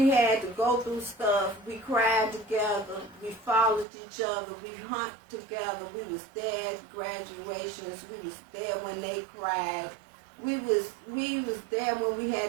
had to go through stuff, we cried together, we followed each other, we hunt together, we was there at graduations, we was there when they cried. We was there when we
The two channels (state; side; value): drops out; left; at 3.9 s